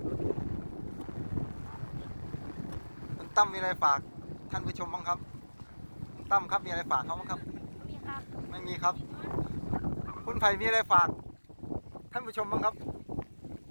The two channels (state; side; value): inverted; both; correlation -1.00